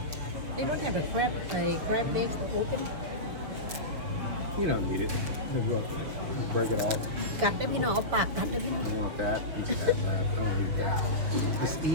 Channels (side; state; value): left; late; 6.9 ms